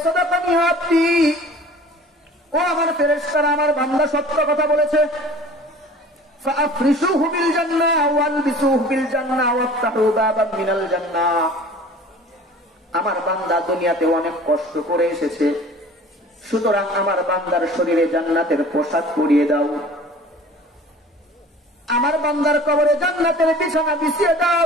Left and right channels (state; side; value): normal; both; correlation 0.45